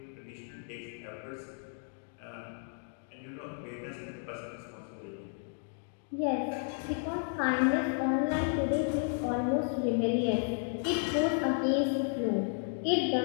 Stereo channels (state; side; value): silent; right; 56 dB below the other